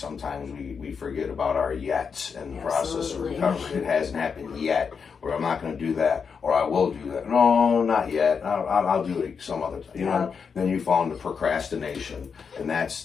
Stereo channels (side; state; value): right; quieter; 6.0 dB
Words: we forget about our yets in the process of recovery. It hasn't happened yet, or I'm not going to do that, or I will do that. No, not yet. I'll do it some other time. Then you fall into procrastination, and